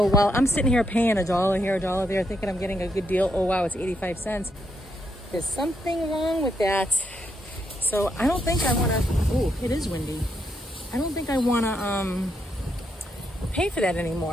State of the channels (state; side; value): normal; both; correlation 0.79